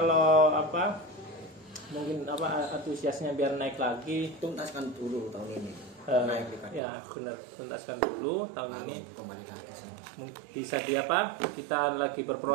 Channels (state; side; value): drops out; left; at 6.8 s